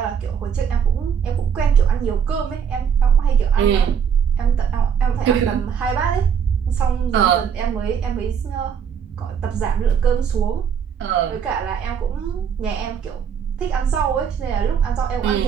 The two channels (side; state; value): left; quieter; 7.4 dB